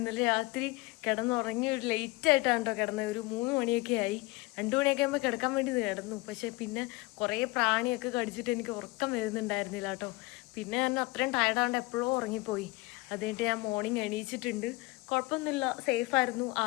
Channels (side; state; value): right; quieter; 21.8 dB